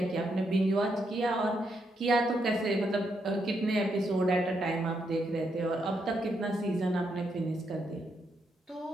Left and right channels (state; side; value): normal; both; correlation 0.79